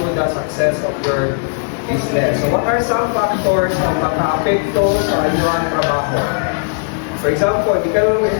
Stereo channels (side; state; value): right; silent; digital silence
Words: the success of your business. So what are some factors na maka-apekto sa inyong trabaho? For example, di ka naman